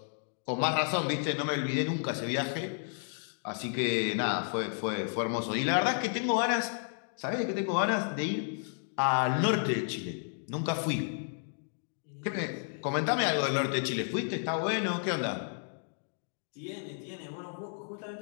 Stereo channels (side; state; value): right; silent; digital silence